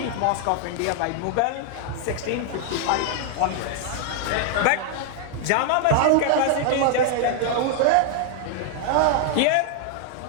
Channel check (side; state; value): both; different; correlation 0.00